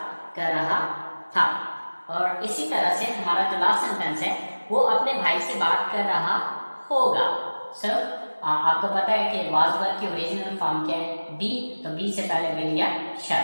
कर रहा था। और इसी तरह से हमारा जो लास्ट सेंटेंस है वो अपने भाई से बात कर रहा होगा। सर आपको पता है कि वाज वर्ब की ओरिजिनल फॉर्म क्या है? बी। तो बी से पहले विल या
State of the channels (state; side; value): inverted; both; correlation -1.00